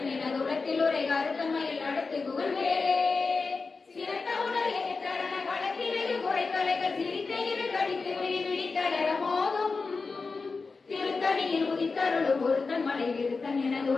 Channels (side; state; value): right; quieter; 4.3 dB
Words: என துளத்தில் உரை கருத்தன்மையில் நடத்துகுவன் வேலே சிறந்த உணர் எதிர்த்தரண களத்திலேயே குறைத்தலைகள் சிரித்த இரு கடித்து விழித்தளர மோதும் திருத்தணியில் உதித்தருளும் ஒருத்தன் மலை விருத்தன் என